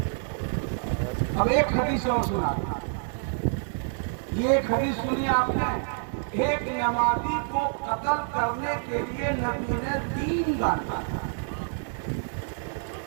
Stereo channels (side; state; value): left; silent; digital silence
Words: اب ایک حدیث اور سنا، یہ ایک حدیث سنی آپ نے، ایک نمازی کو قتل کرنے کے لیے نبی نے 3 گانا،